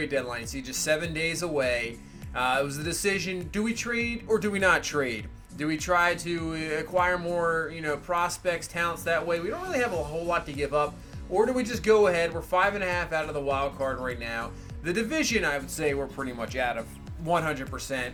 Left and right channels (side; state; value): both; identical; correlation 1.00